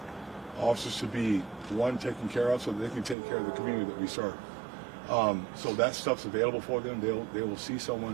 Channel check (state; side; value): drops out; left; at 3.2 s